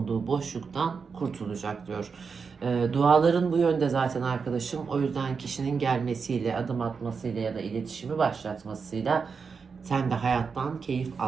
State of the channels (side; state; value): left; quieter; 5.4 dB